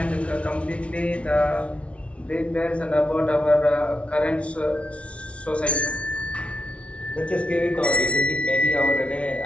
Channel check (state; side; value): late; right; 0.062 ms